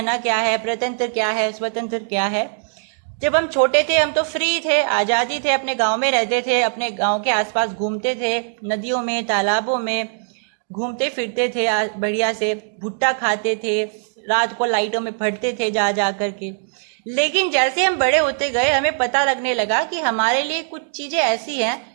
क्या है, प्रतंत्र क्या है, स्वतंत्र क्या है। जब हम छोटे थे हम तो फ्री थे, आजादी थे, अपने गांव में रहते थे, अपने गांव के आसपास घूमते थे, नदियों में, तालाबों में घूमते फिरते थे, बढ़िया से भुट्टा खाते थे, रात को लाइटों में पढ़ते थे जा जा करके। लेकिन जैसे हम बड़े होते गए हमें पता लगने लगा कि हमारे लिए कुछ चीजें ऐसी हैं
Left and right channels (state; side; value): silent; left; digital silence